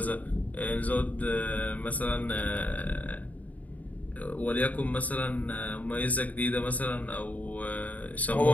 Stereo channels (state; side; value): late; right; 0.073 ms